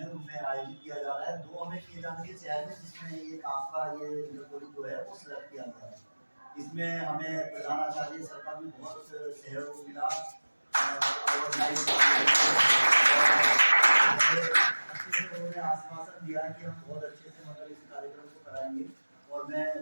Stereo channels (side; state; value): both; inverted; correlation -1.00